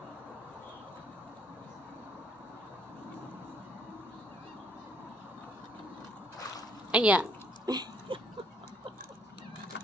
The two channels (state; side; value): normal; both; correlation 0.65